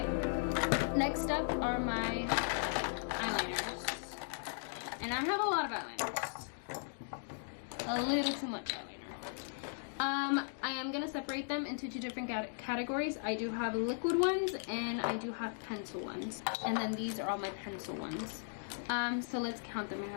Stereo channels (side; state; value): right; silent; digital silence